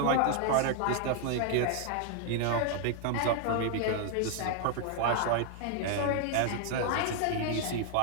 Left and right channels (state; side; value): different; both; correlation 0.00